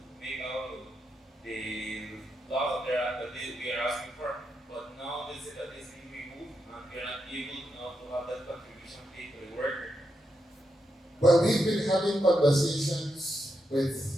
make out the laws that we are asking for, but now they say that it's being removed and we are not able now to have that contribution paid to the worker. Well, we've been having conversations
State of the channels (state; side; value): normal; both; correlation 0.84